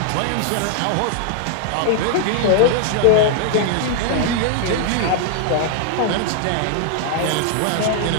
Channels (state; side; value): different; both; correlation 0.00